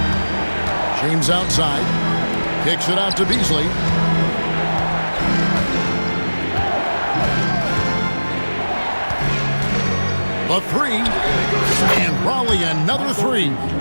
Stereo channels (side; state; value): both; inverted; correlation -1.00